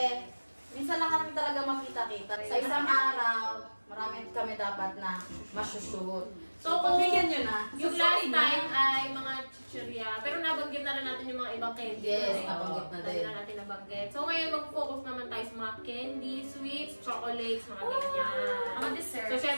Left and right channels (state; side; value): inverted; both; correlation -1.00